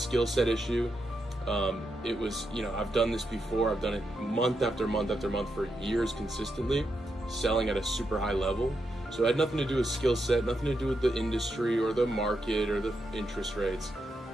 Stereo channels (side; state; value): both; normal; correlation 0.84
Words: set issue. It was, I've done this before. I've done it month after month after month for years consistently, selling at a super high level. So it had nothing to do with skill set, nothing to do with the industry or the market or the interest rates.